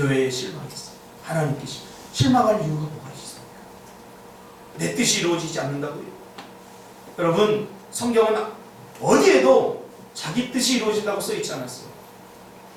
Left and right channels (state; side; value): identical; both; correlation 1.00